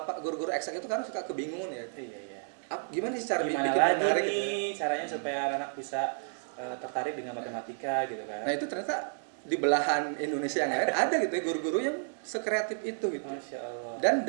guru-guru eksak itu kan suka kebingungan ya. Iya. Gimana sih cara bikin lagi menarik nih gitu? Caranya supaya anak bisa tertarik dengan matematika gitu kan. Nah itu ternyata di belahan Indonesia yang lain ada gitu ya, guru-guru yang sekreatif itu gitu. Masya Allah. Dan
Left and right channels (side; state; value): left; silent; digital silence